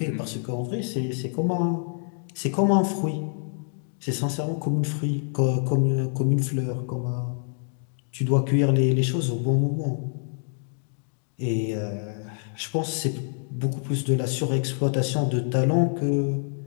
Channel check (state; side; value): silent; right; 57 dB below the other